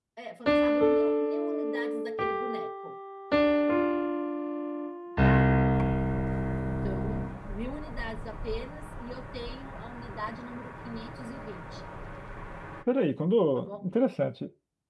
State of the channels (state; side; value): identical; both; correlation 1.00